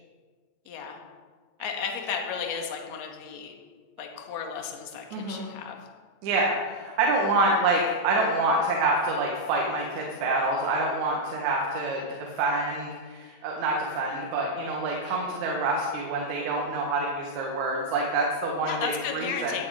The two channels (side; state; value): left; late; 8.4 ms